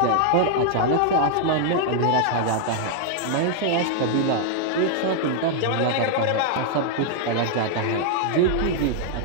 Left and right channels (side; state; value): both; different; correlation 0.00